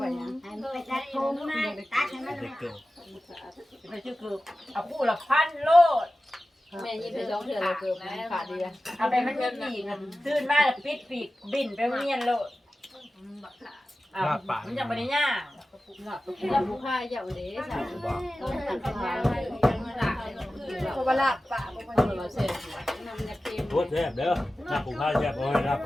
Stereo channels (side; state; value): both; normal; correlation 0.95